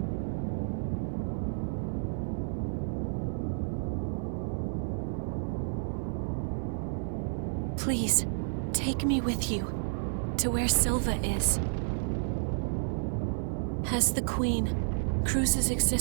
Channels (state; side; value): silent; left; 56 dB below the other